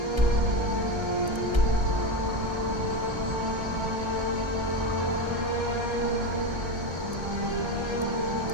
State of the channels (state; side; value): late; left; 1.3 ms